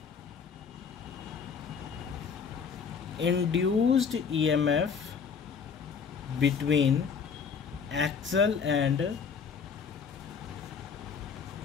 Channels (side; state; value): right; quieter; 6.2 dB